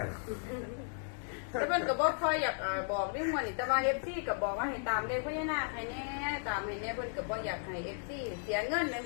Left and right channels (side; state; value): right; silent; 54 dB below the other